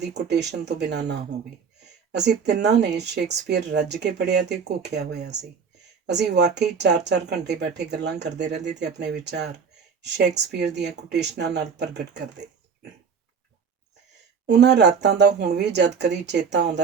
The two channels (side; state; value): left; quieter; 6.2 dB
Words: ਕੋਟੇਸ਼ਨ ਤੋਂ ਬਿਨਾਂ ਨਾ ਹੋਵੇ। ਅਸੀਂ ਤਿੰਨਾਂ ਨੇ ਸ਼ੇਕਸਪੀਅਰ ਰੱਜ ਕੇ ਪੜ੍ਹਿਆ ਤੇ ਘੋਖਿਆ ਹੋਇਆ ਸੀ। ਅਸੀਂ ਵਾਕਈ 4-4 ਘੰਟੇ ਬੈਠੇ ਗੱਲਾਂ ਕਰਦੇ ਰਹਿੰਦੇ ਤੇ ਆਪਣੇ ਵਿਚਾਰ ਸ਼ੇਕਸਪੀਅਰ ਦੀਆਂ ਕੋਟੇਸ਼ਨਾਂ ਨਾਲ ਪ੍ਰਗਟ ਕਰਦੇ। ਉਹਨਾਂ ਰਾਤਾਂ ਦਾ ਹੁਣ ਵੀ ਜਦ ਕਦੀ ਚੇਤਾ